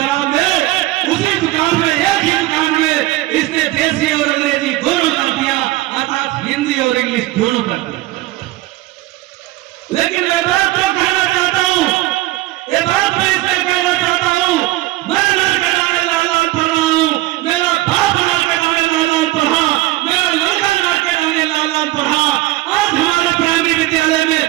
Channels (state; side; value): quieter; left; 17.7 dB